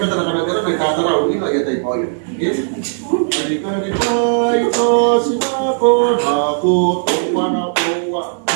kita kadang-kadang naik kata rawu ini lagi tai pai. Yes. Dari pai to sinapon aku tuan apa.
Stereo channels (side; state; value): left; silent; digital silence